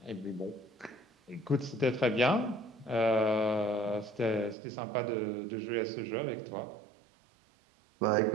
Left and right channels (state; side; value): drops out; left; at 4.5 s